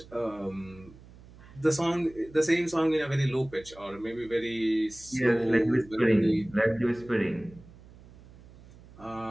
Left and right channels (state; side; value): noise; right; hum, 21 dB below the sound